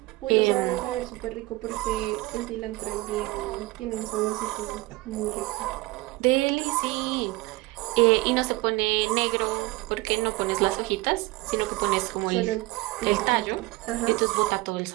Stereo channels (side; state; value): left; quieter; 21.3 dB